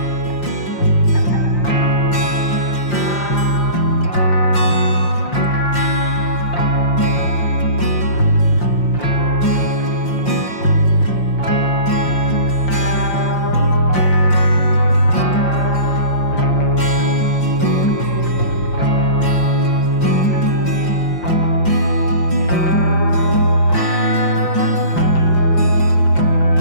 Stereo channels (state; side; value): late; right; 5.7 ms